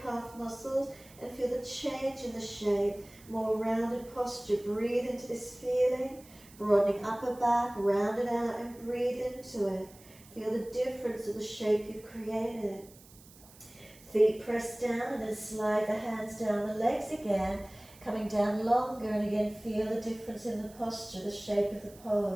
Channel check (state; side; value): noise; right; hiss, 23 dB below the sound